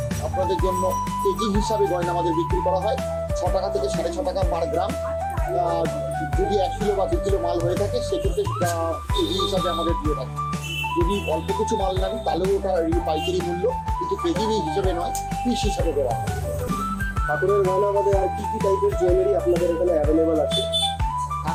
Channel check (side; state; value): both; identical; correlation 1.00